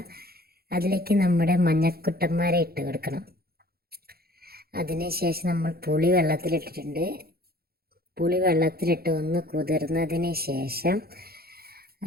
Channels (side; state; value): left; late; 0.45 ms